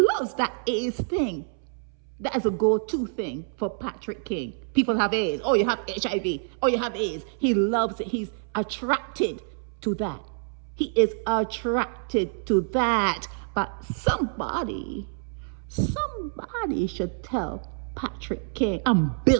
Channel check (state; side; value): silent; left; 60 dB below the other